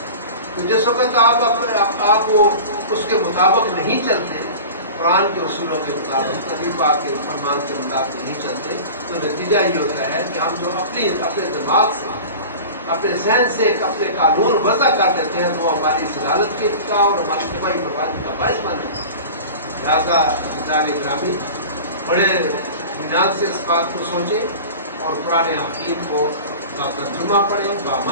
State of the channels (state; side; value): inverted; both; correlation -0.35